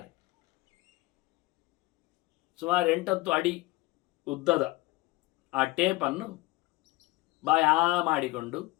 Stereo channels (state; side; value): quieter; right; 20.4 dB